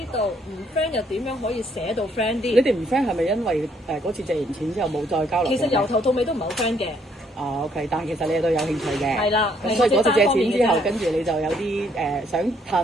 道唔 friend 又點樣可以寫到 friend 啲？你哋唔 friend 係咪因為嗰次借完錢之後冇再交流？其實由頭到尾都唔係好 friend 嘅。OK，但係其實你哋都有興趣嘅。係啦。咁所以嗰次借錢之後，跟住你就有啲想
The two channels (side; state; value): both; normal; correlation 0.68